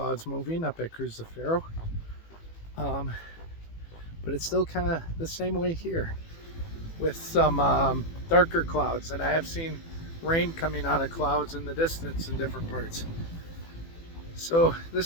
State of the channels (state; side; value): late; right; 18 ms